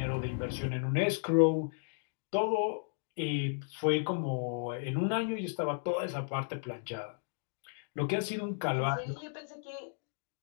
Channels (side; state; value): right; silent; digital silence